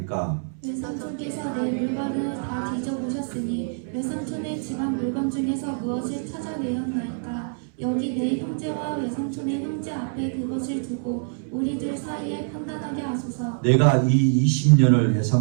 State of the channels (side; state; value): left; silent; 62 dB below the other